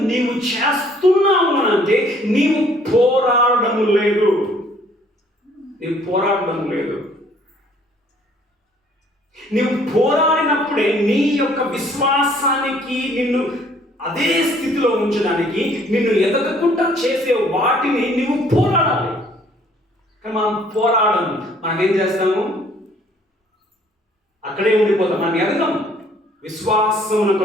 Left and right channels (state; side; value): normal; both; correlation 0.60